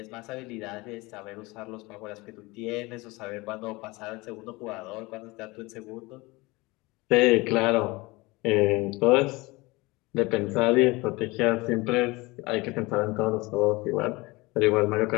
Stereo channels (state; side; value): quieter; right; 23.0 dB